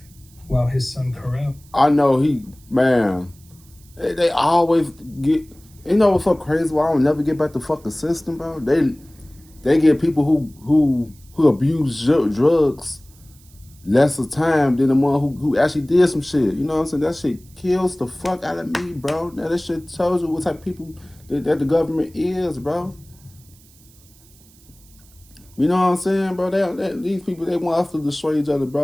while his son Kharel. I know they always get, you know what's so crazy? Why I don't never get back the fucking system, bro? They get people who abuse drugs lesser time than the one who actually did some shit. You know what I'm saying? That shit kills the fuck out of me, bro. Now that shit tells you what type of people that the government is, bro. You know what I'm saying, bro? These people, they want us to destroy each other,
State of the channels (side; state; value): right; noise; hiss, 27 dB below the sound